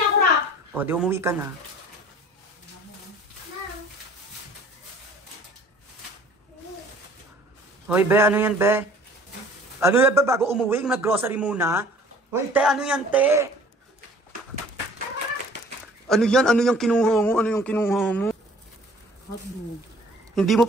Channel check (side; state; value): both; normal; correlation 0.51